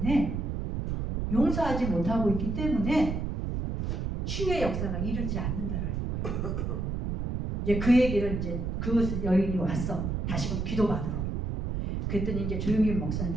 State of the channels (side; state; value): right; noise; rumble, 2 dB below the sound